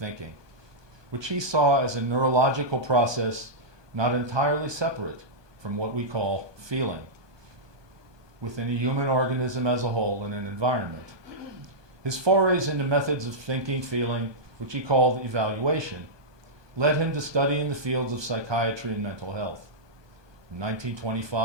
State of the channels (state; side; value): late; left; 1.2 ms